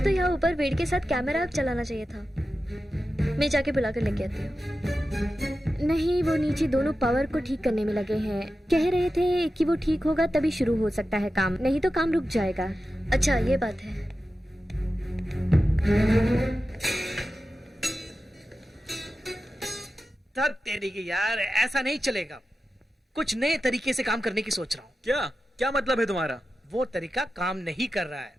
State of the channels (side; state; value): both; normal; correlation 0.92